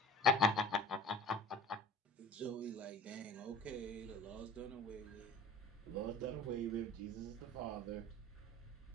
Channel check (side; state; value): both; normal; correlation 0.43